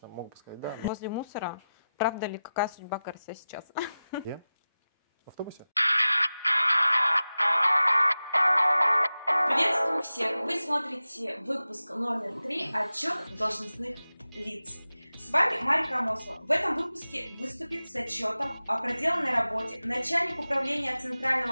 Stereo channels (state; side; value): inverted; both; correlation -0.94